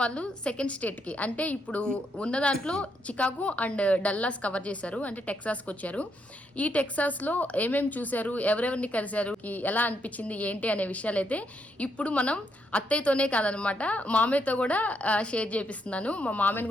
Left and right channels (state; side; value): normal; both; correlation 0.77